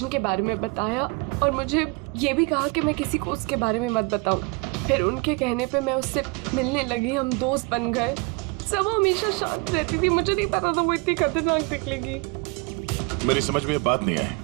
के बारे में बताया और मुझे ये भी कहा कि मैं किसी को उसके बारे में मत बताऊं। फिर उनके कहने पे मैं उससे मिलने लगी, हम दोस्त बन गए। सब वो हमेशा शांत रहती थी, मुझे नहीं पता था वो इतनी खतरनाक निकलेगी। मेरी समझ में ये बात नहीं आई,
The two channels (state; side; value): quieter; left; 28.1 dB